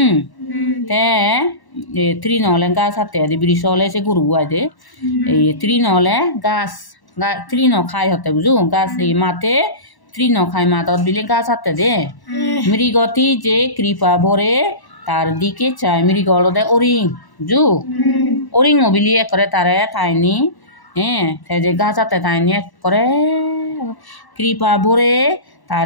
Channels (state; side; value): late; right; 1.1 ms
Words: তে তৃণ হলে গাছ হাতে বৃষ হলে সে গরু আই দে এই তৃণ হলে গাছ তৃণ খাই হতে বুঝু গাছ এই মাতে তৃণ খাই মাদত বিলে গাছ হাতে দে মৃগতি যে কৃপা ভরে তার দিকে চায় মৃগ হল দে অরিং বুঝু অরিং বিলি একরে তারে তাইনি যে গাছ হাতে তাইনি করে কৃপা ভরে